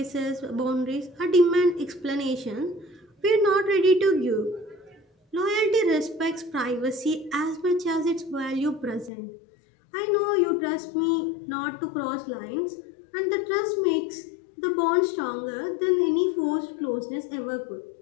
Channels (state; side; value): drops out; right; at 9.1 s